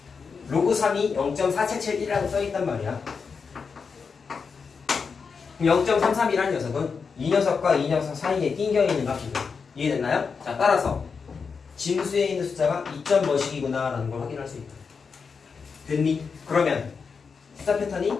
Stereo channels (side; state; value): right; quieter; 5.5 dB